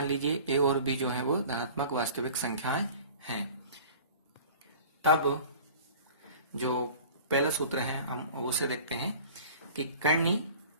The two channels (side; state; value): both; inverted; correlation -0.43